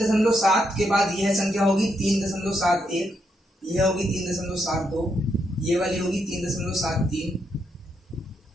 के बाद यह संख्या होगी 3.71, यह होगी 3.72, ये वाली होगी 3.73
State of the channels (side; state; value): both; normal; correlation 0.79